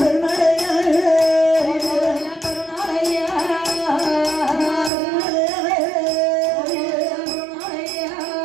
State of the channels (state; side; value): drops out; left; at 4.9 s